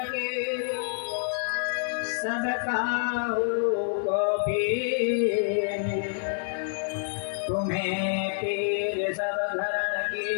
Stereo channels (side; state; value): right; silent; digital silence